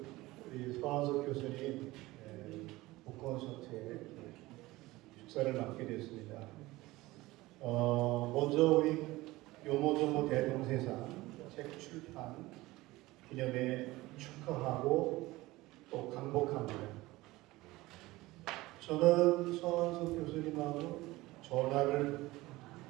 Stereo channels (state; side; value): quieter; left; 19.3 dB